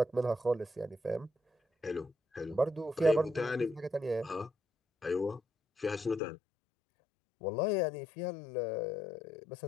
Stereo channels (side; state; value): right; drops out; at 6.2 s